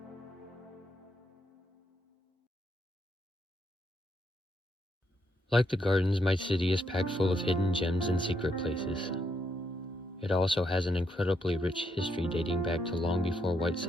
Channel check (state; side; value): normal; both; correlation 0.77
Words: Like the gardens, my city is packed full of hidden gems and secret places. It also has an incredibly rich history dating back to long before white